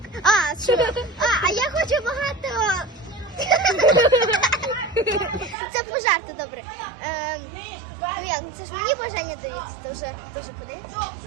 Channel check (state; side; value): drops out; left; at 5.6 s